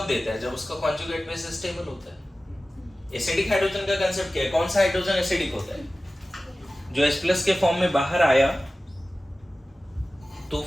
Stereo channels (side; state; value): both; normal; correlation 0.96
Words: देता है, जब उसका कॉन्जुगेट बेस स्टेबल होता है। एसिडिक हाइड्रोजन का कांसेप्ट क्या है, कौन सा हाइड्रोजन एसिडिक होता है, जो H+ के फॉर्म में बाहर आया तो